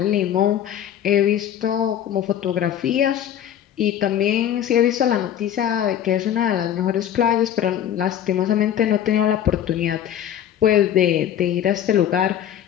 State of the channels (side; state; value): right; quieter; 10.3 dB